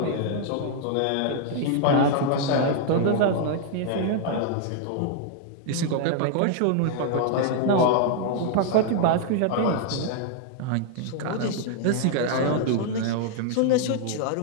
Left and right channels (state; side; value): different; both; correlation 0.00